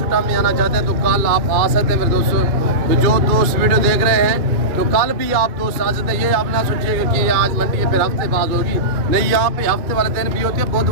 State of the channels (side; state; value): left; late; 2.3 ms